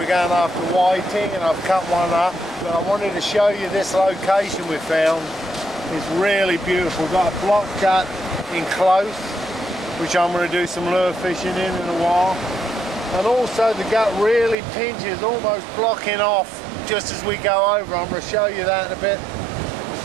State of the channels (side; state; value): left; drops out; at 14.6 s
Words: going after whiting, and I've cut one up. But I wanted to show you this location we found. It's really beautiful. We've got a block gut in close, which I'm going to do some lure fishing in a while. And also the gut really pinches, almost blocking off just as we go over. I'm going to show you that in a bit